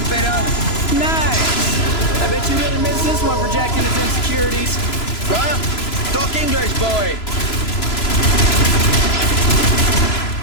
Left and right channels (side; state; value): right; late; 3.0 ms